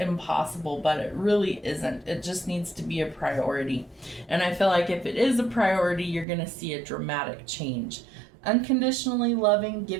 but it really isn't. It just needs to be a priority. And I feel like if it is a priority, you're going to see a dramatic change. Unconditionally loving,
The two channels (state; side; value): drops out; left; at 6.2 s